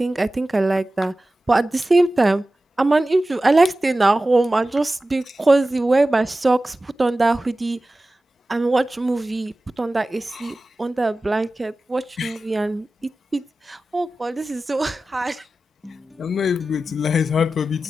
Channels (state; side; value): normal; both; correlation 0.95